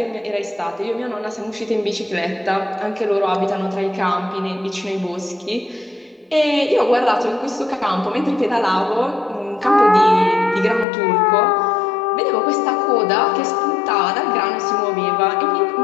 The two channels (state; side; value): drops out; right; at 10.9 s